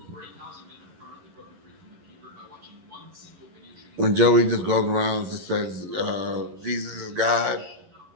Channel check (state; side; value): late; left; 11 ms